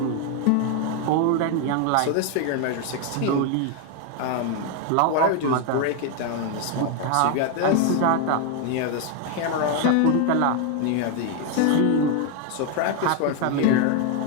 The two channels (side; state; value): both; different; correlation 0.01